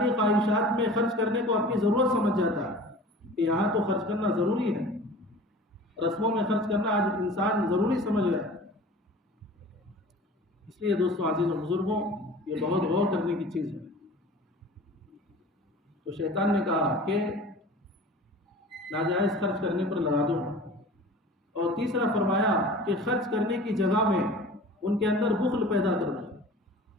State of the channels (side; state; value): both; normal; correlation 0.41